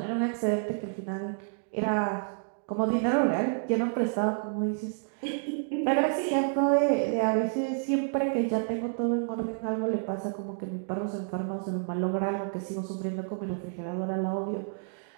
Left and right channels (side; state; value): left; silent; 58 dB below the other